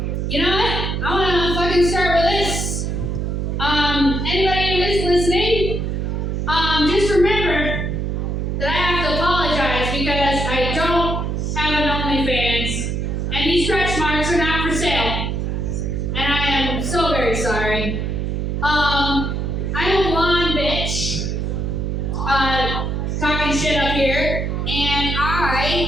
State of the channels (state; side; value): noise; right; hum, 1 dB below the sound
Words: You know what? I want to fucking start with this. Anybody who is listening, just remember that I have to apologize because I don't have an OnlyFans, and these stretch marks are not for sale. And I am so very sorry. I'm a blonde bitch, talking shit up here, and